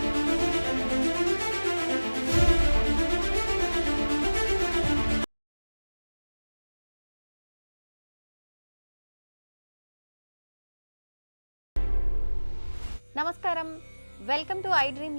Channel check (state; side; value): inverted; both; correlation -1.00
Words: నమస్కారం, వెల్కమ్ టు ఐ డ్రీమ్